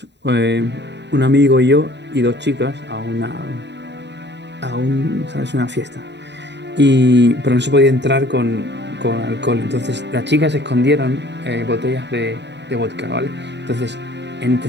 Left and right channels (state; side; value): late; left; 0.51 ms